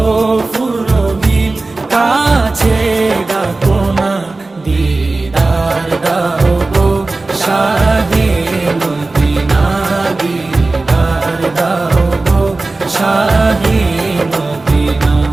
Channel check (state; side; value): quieter; left; 3.3 dB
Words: ফুরবি, কাছে ডাকো না দিদার দাও গো শাহে মদিনা, দিদার দাও গো শাহে মদিনা।